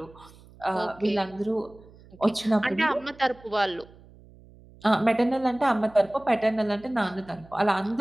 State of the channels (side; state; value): right; noise; hum, 24 dB below the sound